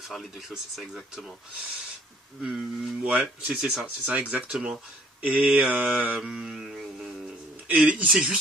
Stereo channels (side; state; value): both; normal; correlation 0.58